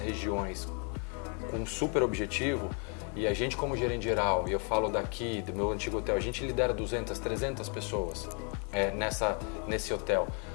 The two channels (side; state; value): right; quieter; 38.2 dB